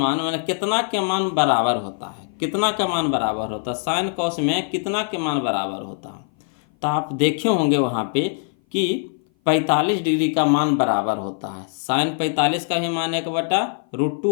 मतलब कितना के मान बराबर होता है, कितना का मान बराबर होता है, साइन कॉस में कितना के मान बराबर होता है। तो आप देखे होंगे वहाँ पे कि 45 डिग्री का मान बराबर होता है, साइन 45 का भी मान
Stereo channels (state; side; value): silent; right; 57 dB below the other